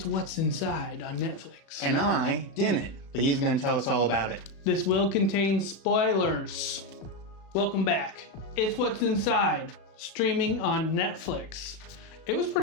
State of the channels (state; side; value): late; right; 36 ms